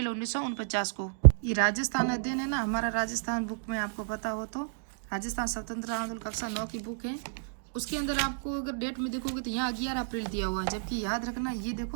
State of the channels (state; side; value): silent; left; digital silence